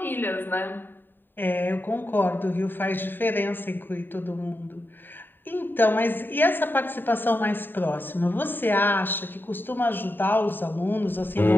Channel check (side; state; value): right; late; 0.094 ms